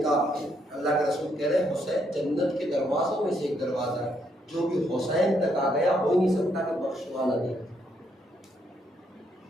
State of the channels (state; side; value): normal; both; correlation 0.74